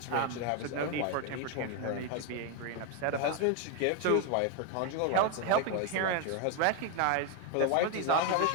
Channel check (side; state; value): both; different; correlation 0.01